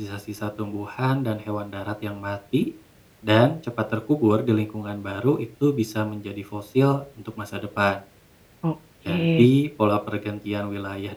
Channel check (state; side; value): identical; both; correlation 1.00